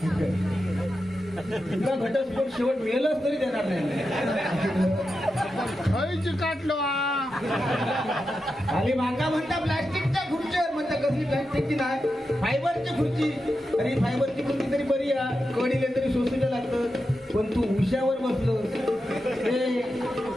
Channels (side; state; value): both; normal; correlation 0.89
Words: तुला घटस्फोट शेवट मिळेलच तरी देणार नाही काटलो खाली मागा म्हणता प्लास्टिकच्या खुर्चीवर म्हणता कसली प्लास्टिकची नाही फायबरची खुर्ची अरे फायबरची खुर्ची तरी बरी आहे कडीले तरी सोसूच्या लागतं पण तू उशावर बसलो हे